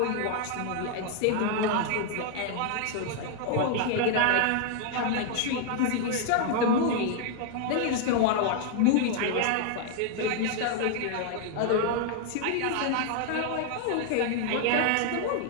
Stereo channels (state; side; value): different; both; correlation 0.00